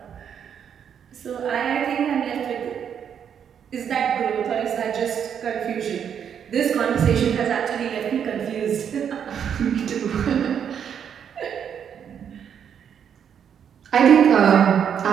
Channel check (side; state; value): left; quieter; 8.2 dB